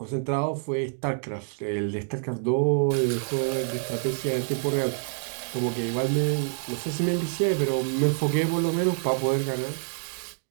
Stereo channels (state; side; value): silent; left; digital silence